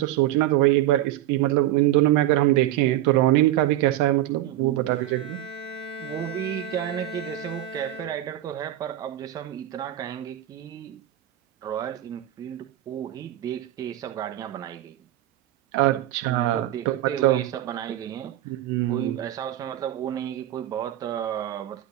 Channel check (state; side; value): quieter; left; 13.7 dB